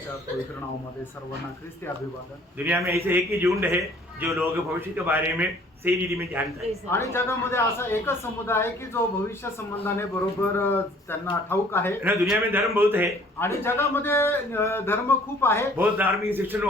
पवित्र नावामध्ये सर्वांना ख्रिस्ती अभिवादन। दुनिया में ऐसे एक ही झुंड है जो लोग भविष्य के बारे में सही रीति में जानता है आणि जगामध्ये असा एकच समुदाय आहे की जो भविष्य संबंधाने बरोबर त्यांना ठाऊक आहे। ना दुनिया में धर्म बहुत है आणि जगामध्ये धर्म खूप आहे, बहुत धार्मिक शिक्षण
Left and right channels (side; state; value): both; normal; correlation 0.55